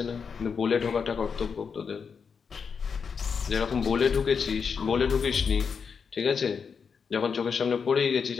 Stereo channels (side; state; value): right; quieter; 6.0 dB